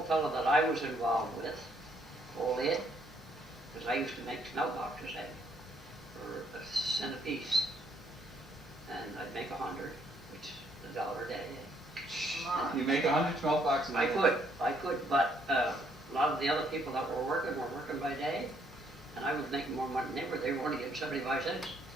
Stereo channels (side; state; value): both; normal; correlation 0.69